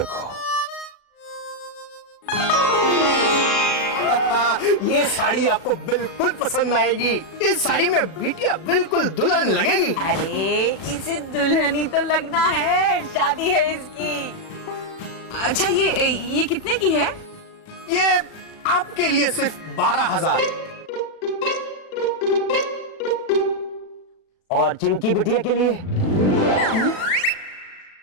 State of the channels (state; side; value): late; right; 37 ms